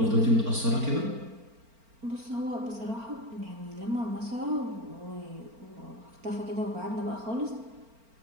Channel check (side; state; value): left; late; 4.4 ms